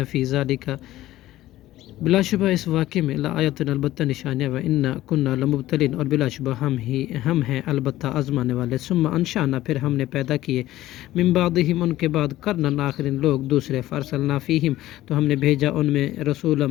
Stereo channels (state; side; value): quieter; right; 15.3 dB